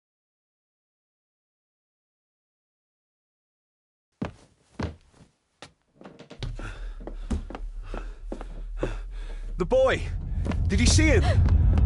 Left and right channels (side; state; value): both; identical; correlation 1.00